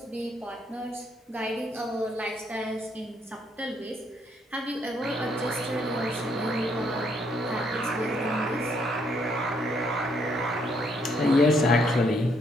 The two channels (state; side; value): normal; both; correlation 0.71